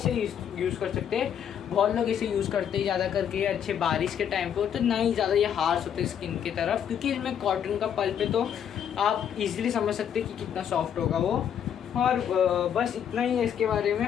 यूज़ कर सकते हैं। बहुत लोग इसे यूज़ करते हैं ज़्यादा करके अच्छे बारिश के टाइम पे, तो ना ही ज़्यादा ये हार्श होते हैं स्किन की तरफ, क्योंकि इसमें कॉटन का पल्प है, तो आप इजीली समझ सकते हैं कि कितना सॉफ्ट होगा वो। और बस इतना ही है इसके बारे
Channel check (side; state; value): right; quieter; 8.8 dB